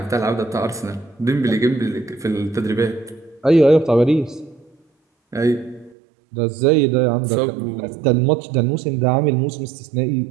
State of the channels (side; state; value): left; drops out; at 6.0 s